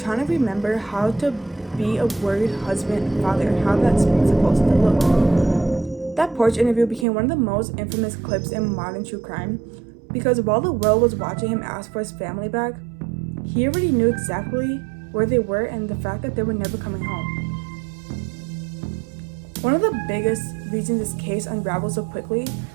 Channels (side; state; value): left; drops out; at 7.1 s